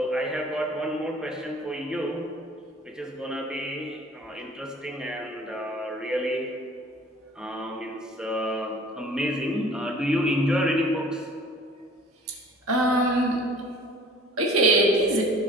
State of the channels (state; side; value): normal; both; correlation 0.49